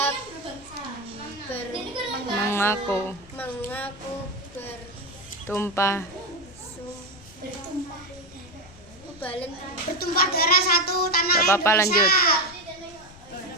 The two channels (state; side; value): noise; left; rumble, 21 dB below the sound